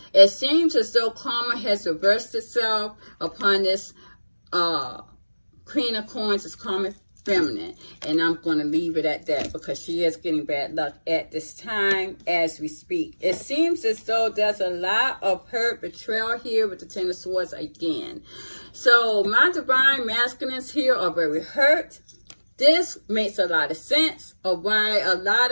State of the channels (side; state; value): both; inverted; correlation -1.00